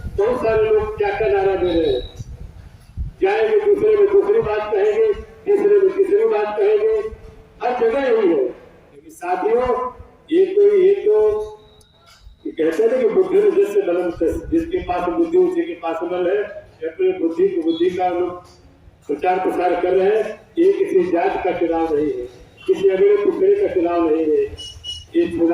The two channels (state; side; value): identical; both; correlation 1.00